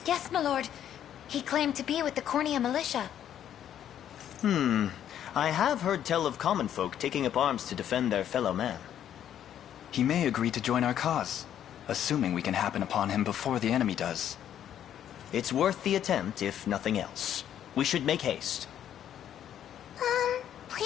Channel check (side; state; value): right; quieter; 10.3 dB